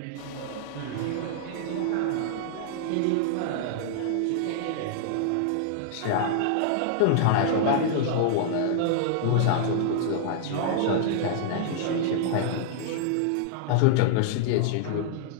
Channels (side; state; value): both; different; correlation -0.01